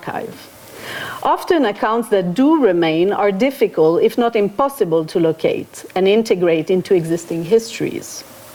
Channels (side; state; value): both; identical; correlation 1.00